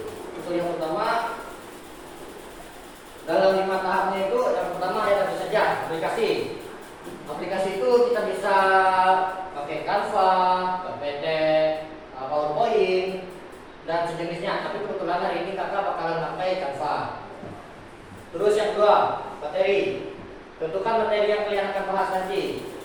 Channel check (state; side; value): identical; both; correlation 1.00